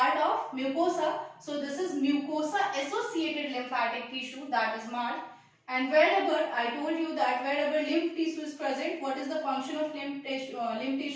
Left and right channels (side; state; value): both; identical; correlation 1.00